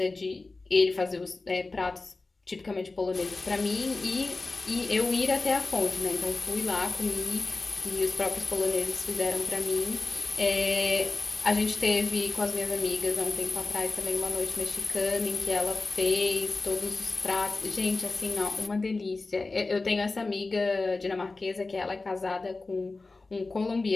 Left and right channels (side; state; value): right; quieter; 3.5 dB